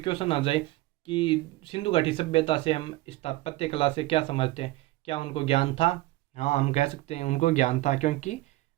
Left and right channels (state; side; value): quieter; left; 18.6 dB